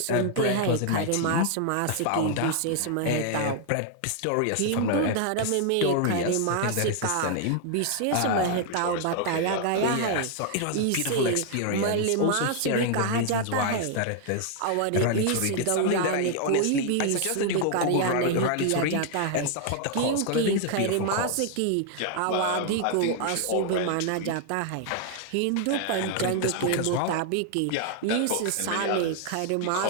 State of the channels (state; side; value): different; both; correlation 0.00